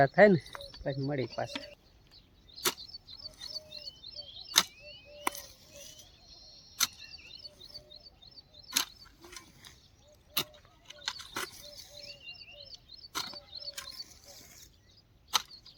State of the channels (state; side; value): identical; both; correlation 1.00